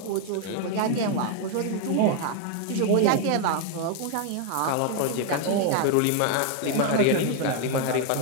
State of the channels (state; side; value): different; both; correlation 0.00